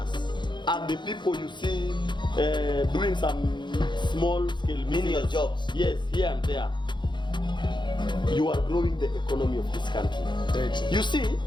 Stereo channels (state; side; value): late; right; 0.22 ms